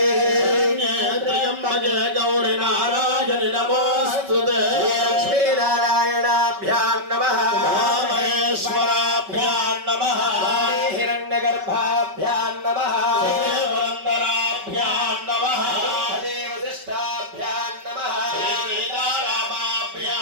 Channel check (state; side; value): late; left; 5.2 ms